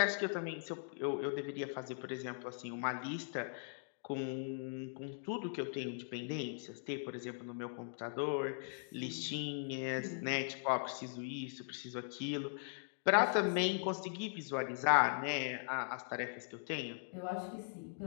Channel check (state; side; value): silent; right; digital silence